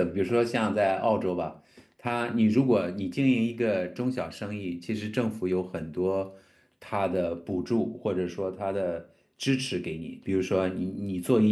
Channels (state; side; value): identical; both; correlation 1.00